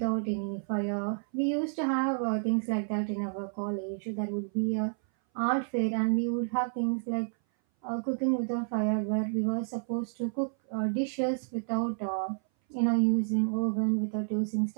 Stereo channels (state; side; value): silent; left; 58 dB below the other